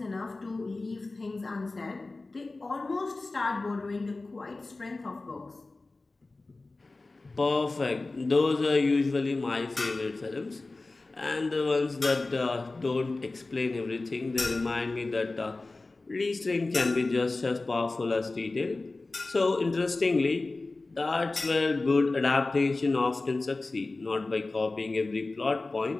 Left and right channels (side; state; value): right; quieter; 3.3 dB